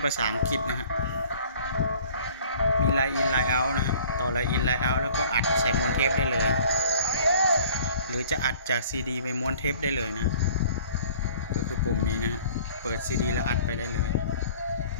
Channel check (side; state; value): both; inverted; correlation -0.51